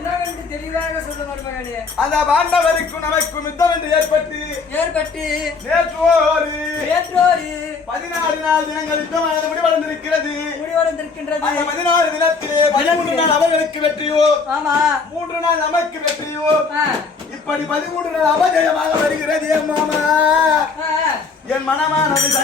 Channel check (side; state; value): right; quieter; 4.7 dB